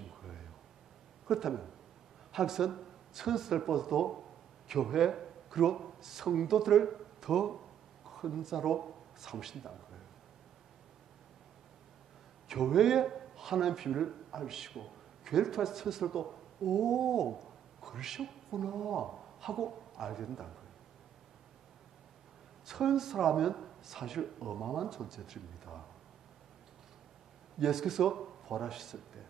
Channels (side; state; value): left; quieter; 9.8 dB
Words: 거예요. 그렇다면 하나님께서는 천사들보다도 교회 그리고 성도들을 더 큰 자로 삼으신다는 거예요. 교회에 하나님의 비밀을 알시고 교회를 통해서 천사들도 오 그러셨구나 하고 알게 된다는 거예요. 천사라면 사실 어마어마한 존재들입니다. 예수께서 부활하셨을 때